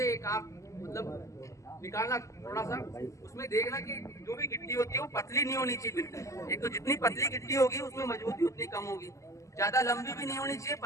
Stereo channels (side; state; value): right; late; 0.15 ms